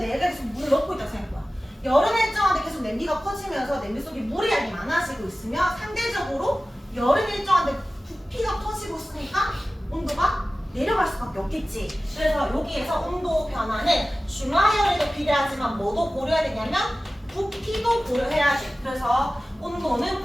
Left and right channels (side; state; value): both; normal; correlation 0.96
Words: 계속 물을 넣고 있다고 생각해봐. 열은 일정한데 계속 냄비가 커지면서 냄비 속에 물의 양이 많아지고 있으면 상대적으로 열은 일정한데 부피가 커지고 있으니까 온도가 내려갈 수밖에 없겠지. 그래서 여기에서 온도 변화는 중화열에도 비례하지만 뭐도 고려해야 되냐면 부피도 고려해야지. 그래서